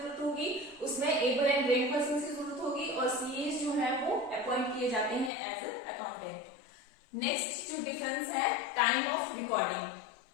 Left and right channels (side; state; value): right; drops out; at 5.3 s